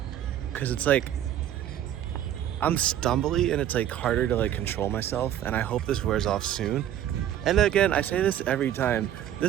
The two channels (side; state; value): left; quieter; 11.1 dB